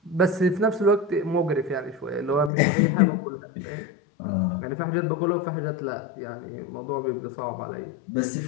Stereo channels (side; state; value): right; drops out; at 2.5 s